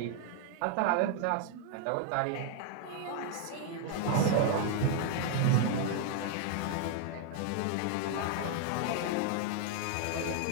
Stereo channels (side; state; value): both; different; correlation 0.00